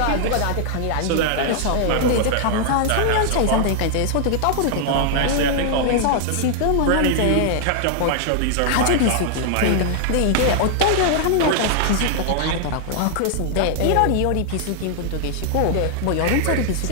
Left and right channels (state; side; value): different; both; correlation 0.00